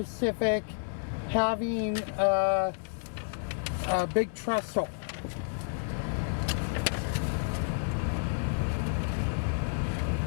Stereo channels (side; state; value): right; silent; 58 dB below the other